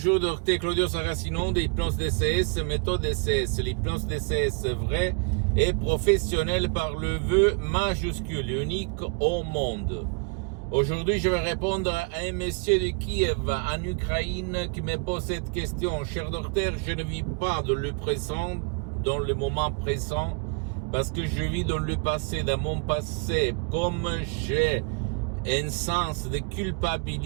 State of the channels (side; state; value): left; quieter; 33.3 dB